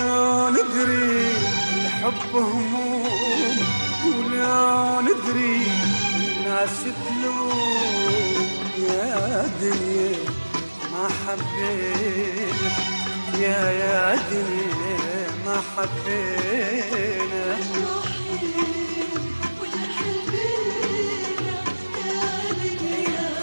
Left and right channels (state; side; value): inverted; both; correlation -1.00